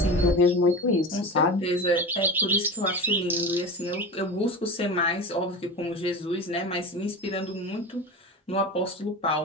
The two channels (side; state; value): both; normal; correlation 0.28